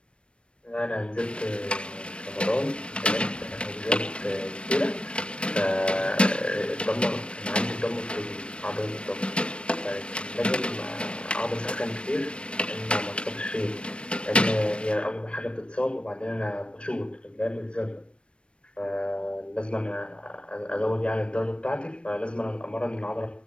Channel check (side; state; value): right; late; 0.058 ms